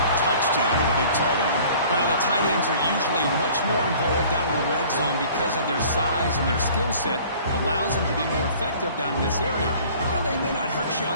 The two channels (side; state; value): both; inverted; correlation -0.50